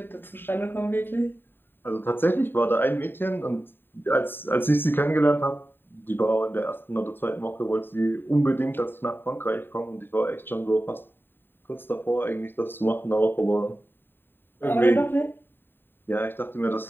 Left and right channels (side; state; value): right; late; 0.097 ms